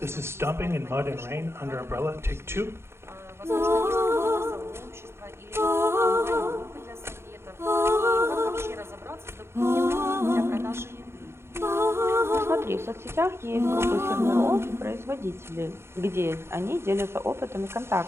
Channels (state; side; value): late; left; 0.12 ms